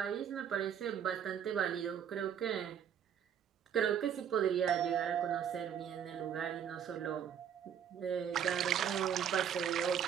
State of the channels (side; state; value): left; quieter; 8.6 dB